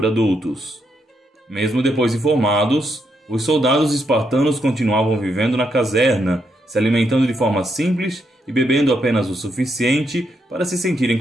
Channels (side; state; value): both; normal; correlation 0.79